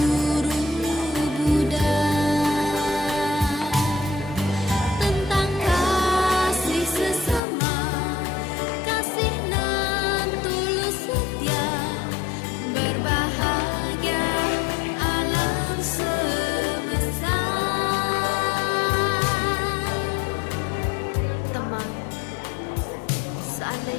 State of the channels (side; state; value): right; drops out; at 7.4 s